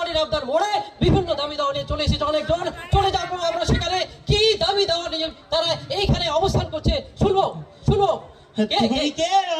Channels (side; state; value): both; identical; correlation 1.00